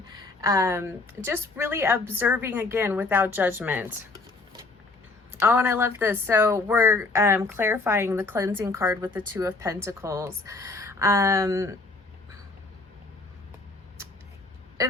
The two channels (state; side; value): quieter; right; 3.5 dB